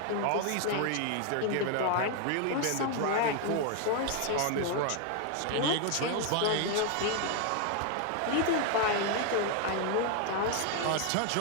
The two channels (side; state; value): both; different; correlation 0.00